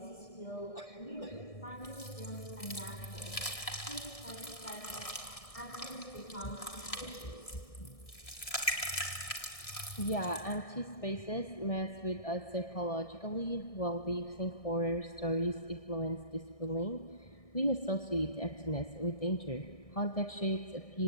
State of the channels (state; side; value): late; right; 1.6 ms